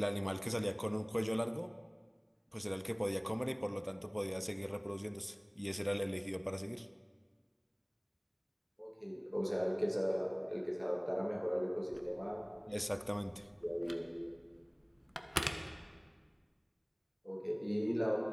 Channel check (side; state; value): both; identical; correlation 1.00